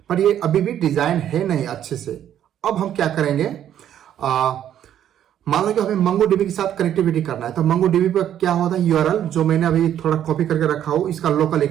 पर ये अभी भी डिजाइन है नहीं अच्छे से। अब हम क्या करेंगे, मान लो कि हमें MongoDB के साथ कनेक्टिविटी करना है तो MongoDB पर क्या होता है, URL जो मैंने अभी थोड़ा कॉपी करके रखा हूं, इसका लोकल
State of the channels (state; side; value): quieter; left; 10.5 dB